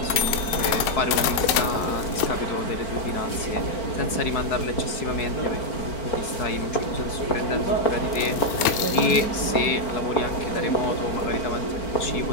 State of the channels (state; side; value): late; right; 4.6 ms